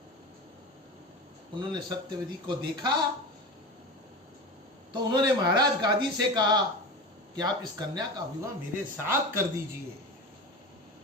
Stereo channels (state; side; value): normal; both; correlation 0.28